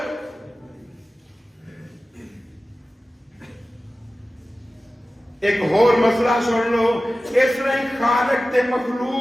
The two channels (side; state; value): both; normal; correlation 0.95